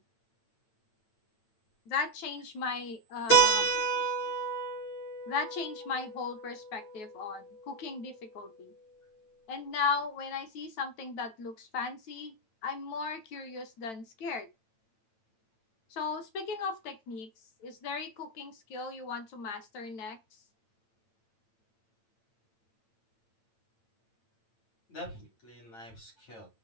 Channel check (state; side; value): late; right; 8.9 ms